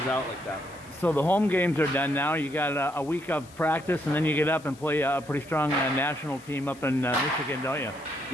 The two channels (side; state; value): left; noise; hiss, 23 dB below the sound